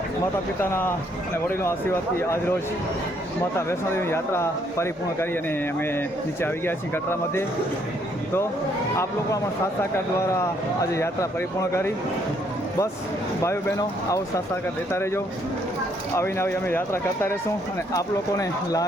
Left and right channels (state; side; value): normal; both; correlation 0.69